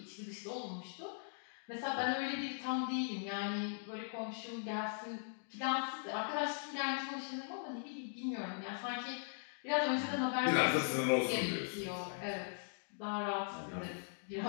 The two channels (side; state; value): right; silent; digital silence